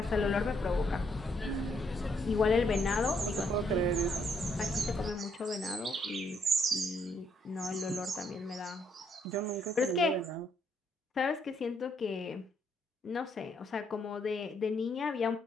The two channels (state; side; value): normal; both; correlation 0.72